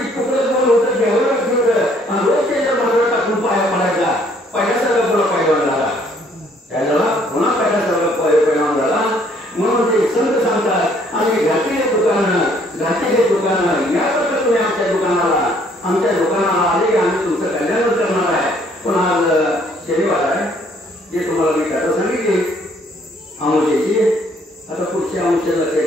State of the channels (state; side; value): normal; both; correlation 0.63